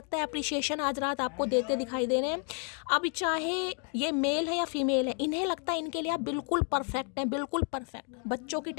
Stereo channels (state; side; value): quieter; right; 39.6 dB